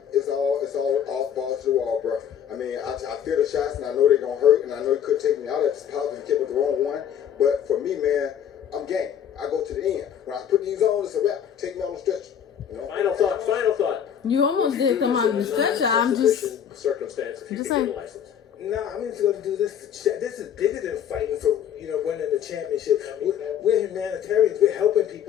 it's all balls to the wall, bro. I mean, I feel the shots, and I know they're gonna hurt, and I know it could take me out at this positive tip with the wrong one. But for me, man, I'm game. I go to the end. When I put these on, it's a wrap. Take me on the stretch. You know? Final thought. You almost did come out of the stretcher. I'm just circumstance if you just can saying. get a license. No, I'm just going to do this. This is bigger than fighting for, winning the championship. We're humanitarians. We're helping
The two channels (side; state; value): right; quieter; 8.9 dB